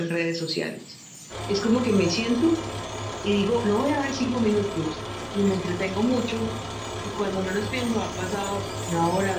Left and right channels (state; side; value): identical; both; correlation 1.00